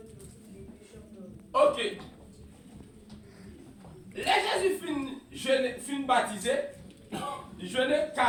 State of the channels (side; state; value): both; identical; correlation 1.00